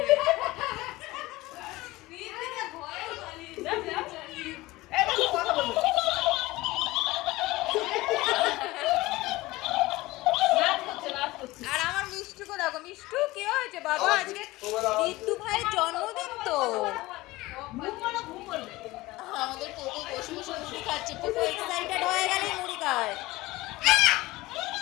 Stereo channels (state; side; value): quieter; right; 19.5 dB